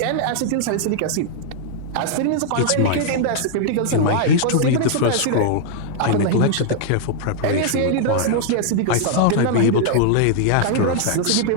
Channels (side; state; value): both; different; correlation -0.01